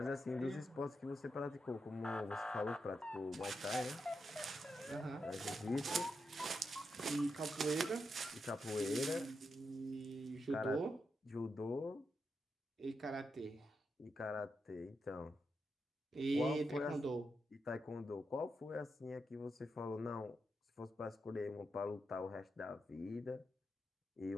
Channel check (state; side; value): normal; both; correlation 0.85